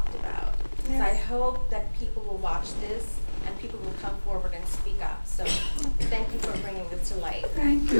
about. So I hope that people will watch this and people will come forward and speak up. So thank you for bringing this to light. Thank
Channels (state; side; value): inverted; both; correlation -1.00